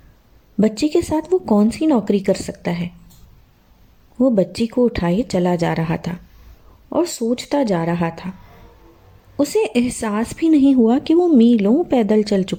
بچی کے ساتھ وہ کون سی نوکری کر سکتا ہے؟ وہ بچی کو اٹھائے چلا جا رہا تھا اور سوچتا جا رہا تھا۔ اسے احساس بھی نہیں ہوا کہ وہ میلوں پیدل چل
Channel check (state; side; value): identical; both; correlation 1.00